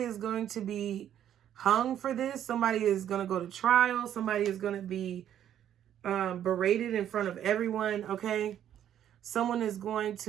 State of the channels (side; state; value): left; quieter; 10.5 dB